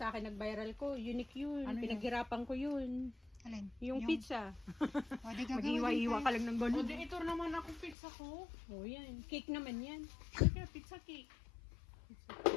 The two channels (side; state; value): right; drops out; at 8.0 s